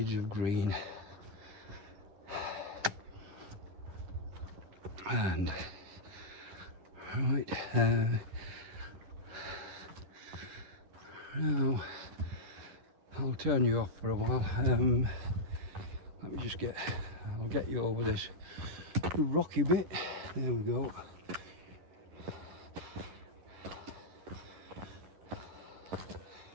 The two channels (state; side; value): late; left; 11 ms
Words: of green. And right, Now, I'll turn you off for a while. Let me just I'll get you over this rocky bit. There we go.